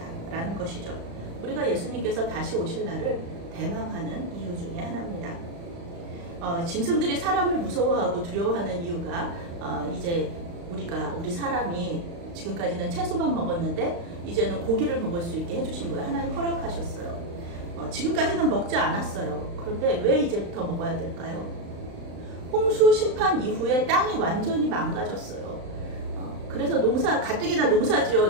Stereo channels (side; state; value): left; late; 35 ms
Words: 라는 것이죠. 우리가 예수님께서 다시 오실 날을 대망하는 이유 중에 하나입니다. 짐승들이 사람을 무서워하고 두려워하는 이유가 이제 우리 사람이 지금까지는 채소만 먹었는데 이제는 고기를 먹을 수 있게 해주신 거예요. 하나님 허락하셨어요. 지금까지는 먹지 않았어요. 그런데 왜 이제부터 먹어야 될까요? 홍수 심판 이후에 땅이 완전히 망가졌어요. 그래서 가뜩이나 농사